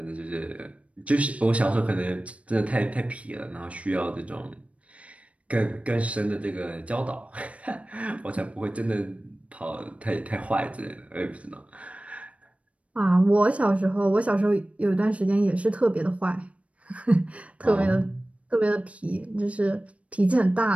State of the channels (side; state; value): left; late; 0.064 ms